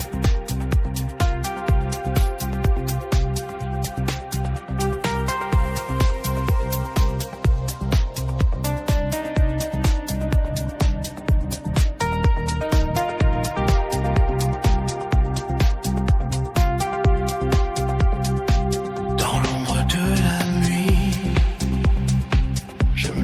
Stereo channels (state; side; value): identical; both; correlation 1.00